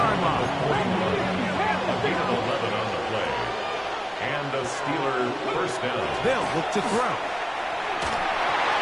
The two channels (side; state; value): both; identical; correlation 1.00